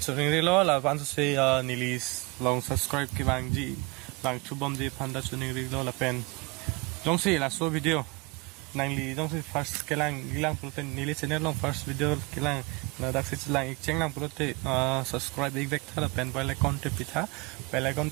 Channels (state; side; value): quieter; left; 27.6 dB